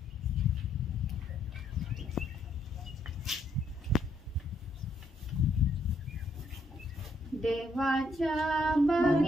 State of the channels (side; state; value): both; normal; correlation 0.72